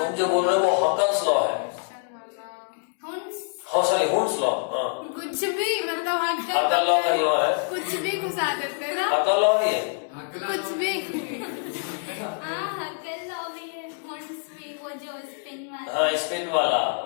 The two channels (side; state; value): right; silent; digital silence